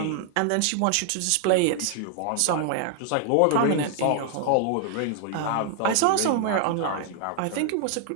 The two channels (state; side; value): different; both; correlation 0.00